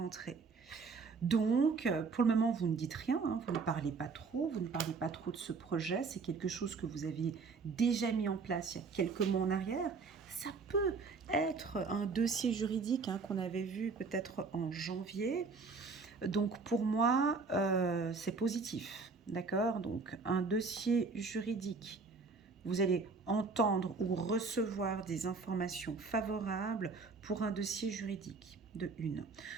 Donc, pour le moment, vous ne dites rien, hein, vous ne parlez pas trop, vous ne parlez pas trop de ce projet. C'est quelque chose que vous aviez déjà mis en place il y a quelques mois en arrière. Ça peut être un dossier juridique, hein, qu'on avait vu peut-être en janvier. Donc, pour moi, c'est positif, d'accord? Donc, un dossier juridique, vous allez entendre ou recevoir des informations favorables pour un dossier juridique, de une.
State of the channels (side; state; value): left; quieter; 4.5 dB